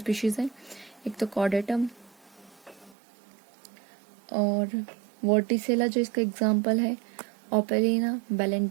हैं. एक तो कॉर्डेटम और वर्टिसेला जो इसका एग्जाम्पल है, ओपेलिना,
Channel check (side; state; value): left; drops out; at 3.0 s